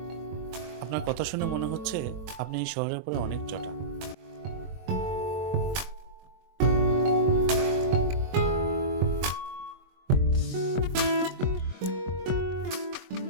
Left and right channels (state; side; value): late; left; 22 ms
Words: আপনার কথা শুনে মনে হচ্ছে আপনি এই শহরের উপরে অনেক চটা।